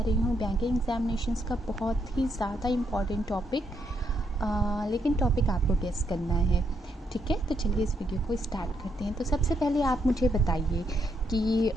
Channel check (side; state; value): both; normal; correlation 0.77